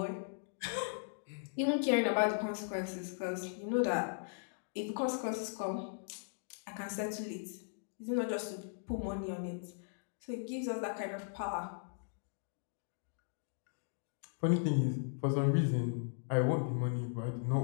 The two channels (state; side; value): silent; right; digital silence